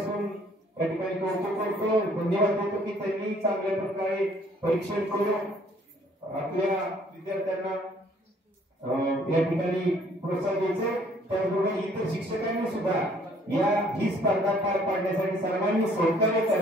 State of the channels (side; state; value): both; normal; correlation 0.60